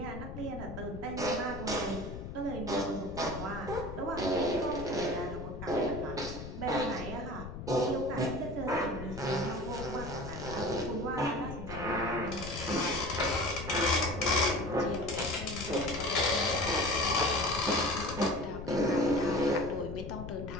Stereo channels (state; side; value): noise; left; rumble, 9 dB below the sound